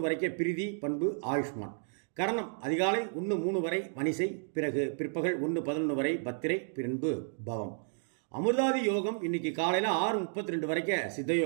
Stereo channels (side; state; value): left; silent; digital silence